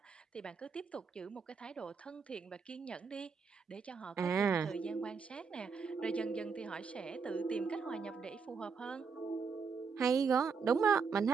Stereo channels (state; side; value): quieter; left; 5.5 dB